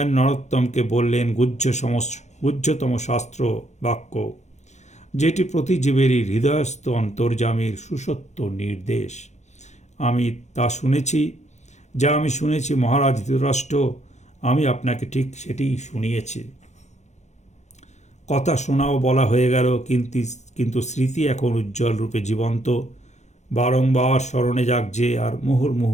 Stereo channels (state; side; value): late; right; 0.33 ms